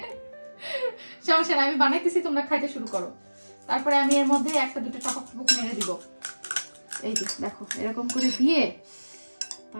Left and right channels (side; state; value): both; inverted; correlation -1.00